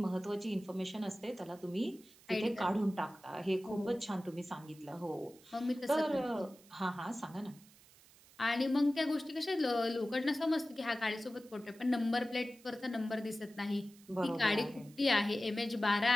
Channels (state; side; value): noise; right; hiss, 25 dB below the sound